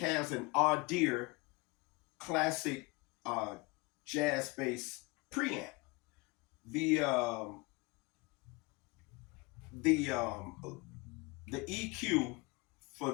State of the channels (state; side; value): quieter; right; 25.5 dB